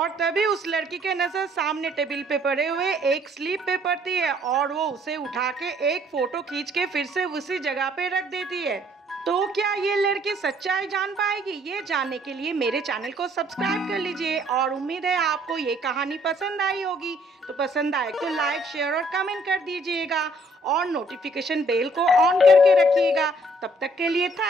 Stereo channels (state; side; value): normal; both; correlation 0.63